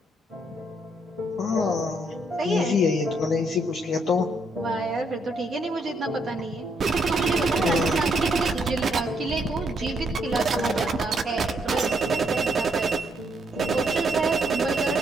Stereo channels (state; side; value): normal; both; correlation 0.73